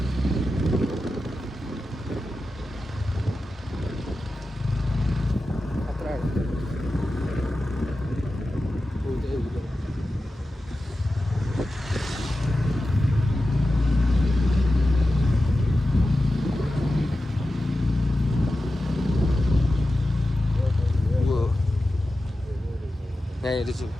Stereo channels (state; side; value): normal; both; correlation 0.93